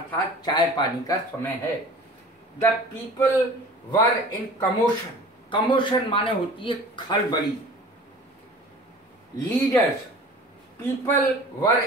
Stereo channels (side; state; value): both; normal; correlation 0.43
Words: चाय पानी का समय है। The people were in commotion, commotion माने होती है खलबली। Leaders, people were